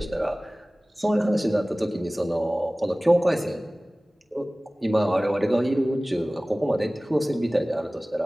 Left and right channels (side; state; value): both; normal; correlation 0.98